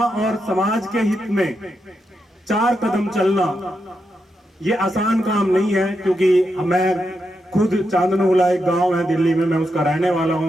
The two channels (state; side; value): normal; both; correlation 0.85